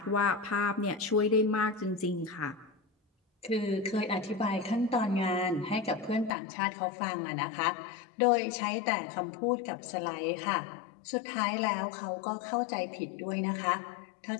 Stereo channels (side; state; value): right; drops out; at 6.3 s